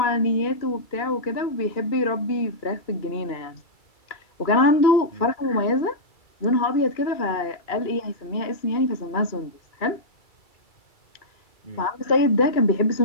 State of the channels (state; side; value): late; right; 2.3 ms